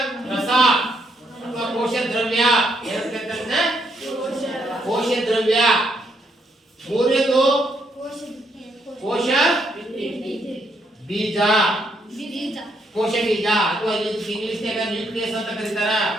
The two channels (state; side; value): normal; both; correlation 0.75